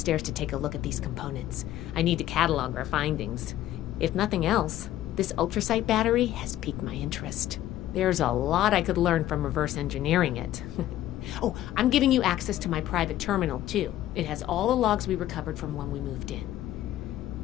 to take a look at these components. I need to catalog our findings. If nothing else, This ultrasight battery has piqued my interest. There's a lot I could learn from reverse engineering it. Oh, I'm giving you access to my private terminal, too. It has all the logs we recovered from when we moved in.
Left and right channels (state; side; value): quieter; right; 13.3 dB